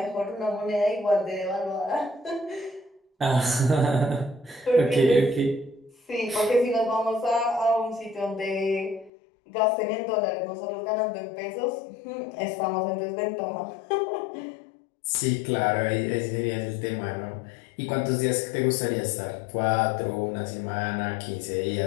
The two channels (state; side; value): drops out; right; at 9.1 s